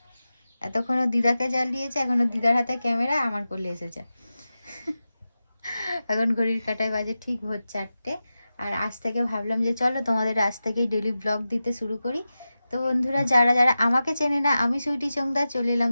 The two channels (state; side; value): inverted; both; correlation -0.94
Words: এতক্ষণও দিদাকে জ্বালিয়েছে, এখনো দিদার হাতে ক্যামেরা, আমার কোলে এসেছে। এখন ঘড়ির কাঁটায় বাজে ঠিক ভোর 4টে। আর আজ থেকে ভাবলাম যে চলো তোমাদের আজ থেকেই ডেলি ব্লগ দিতে শুরু করি। তো বন্ধুরা, যারা যারা আমাকে চেনে না, আমি সুইটি চোংদা চলে এলাম